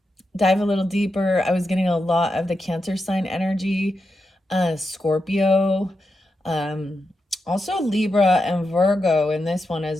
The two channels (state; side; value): normal; both; correlation 0.87